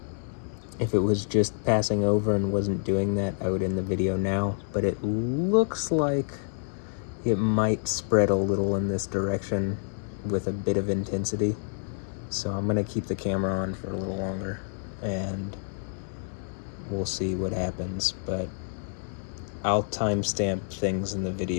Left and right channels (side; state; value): right; silent; digital silence